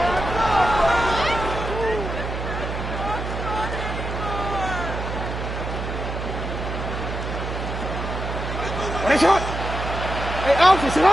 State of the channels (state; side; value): noise; right; hum, 5 dB below the sound